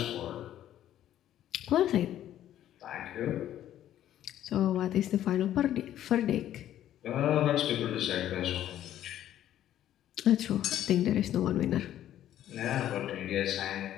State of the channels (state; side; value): quieter; right; 11.9 dB